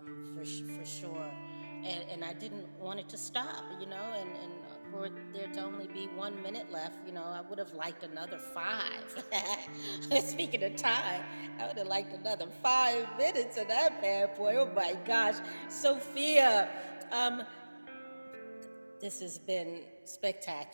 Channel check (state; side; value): inverted; both; correlation -1.00